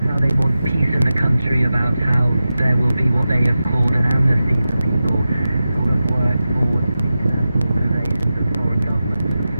how they want peace in the country, about how there will be what they have called an amnesty for people who have worked for international organizations and foreign governments,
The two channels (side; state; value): both; inverted; correlation -0.93